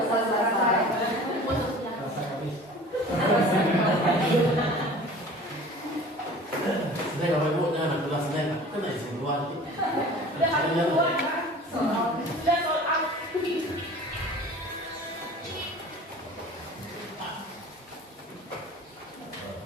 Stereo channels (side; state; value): both; normal; correlation 0.43